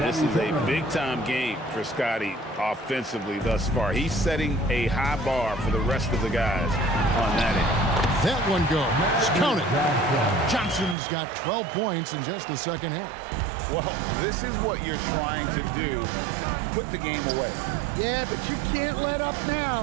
is a big-time game for Scotty offensively thus far. He's setting a high bar for the rest of the guys on that end. That one goes. Count it. Johnson's got 12 points in just the second half. Well, this is what you're trying to do. Put the game away. Yeah, but you can't let up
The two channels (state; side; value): drops out; left; at 11.0 s